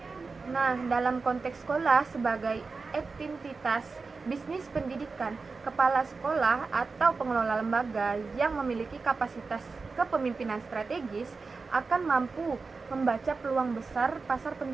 Nah, dalam konteks sekolah sebagai entitas bisnis pendidikan, kepala sekolah atau pengelola lembaga yang memiliki kapasitas kepemimpinan strategis akan mampu membaca peluang besar pasar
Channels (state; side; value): quieter; left; 4.3 dB